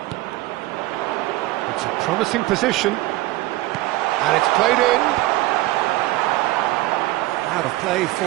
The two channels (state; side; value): quieter; left; 18.0 dB